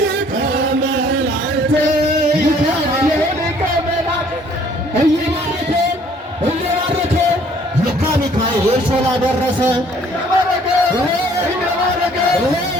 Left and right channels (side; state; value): both; normal; correlation 0.59